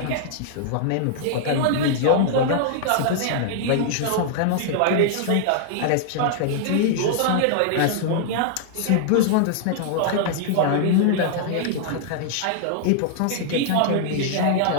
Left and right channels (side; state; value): both; different; correlation -0.01